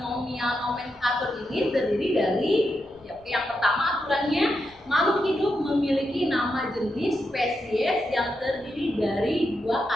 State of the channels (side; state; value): right; noise; rumble, 27 dB below the sound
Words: nomenklatur ini terdiri dari yang pertama, aturannya makhluk hidup memiliki nama jenis spesies yang terdiri dari dua